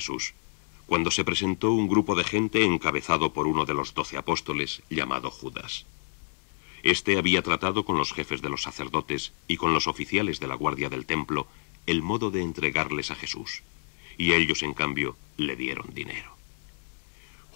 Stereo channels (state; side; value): silent; right; 59 dB below the other